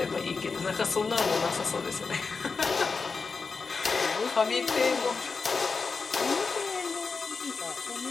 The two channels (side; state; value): right; quieter; 4.7 dB